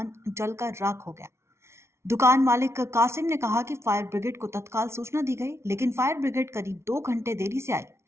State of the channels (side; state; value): left; late; 0.13 ms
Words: जलकर राख हो गया। दुकान मालिक कासिम ने कहा कि फायर ब्रिगेड को तत्काल सूचना दी गई, लेकिन फायर ब्रिगेड करीब 2 घंटे देरी से आई।